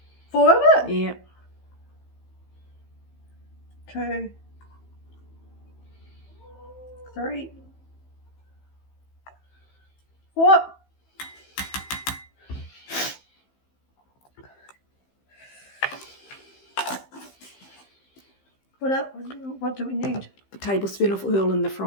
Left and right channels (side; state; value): right; late; 15 ms